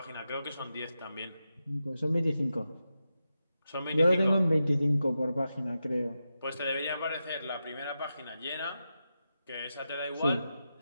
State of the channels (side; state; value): both; inverted; correlation -0.89